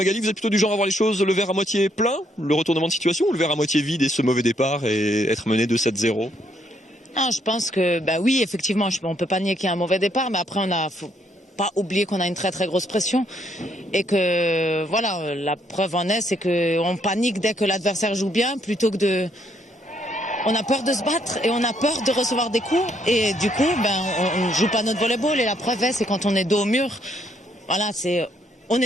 vous êtes plutôt du genre à voir les choses, le verre à moitié plein, le retournement de situation, ou le verre à moitié vide et ce mauvais départ et être mené de 7-0? Non, je pense que, oui, effectivement, on ne peut pas nier qu'il y a un mauvais départ, mais après, faut pas oublier qu'on a une très très grosse pression et que, voilà, la preuve en est, c'est qu'on panique dès que l'adversaire joue bien plutôt que on a peur de se battre et on a peur de recevoir des coups et du coup on ne joue pas notre volleyball et la preuve c'est quand on est dos au mur, voilà, on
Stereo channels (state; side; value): normal; both; correlation 0.72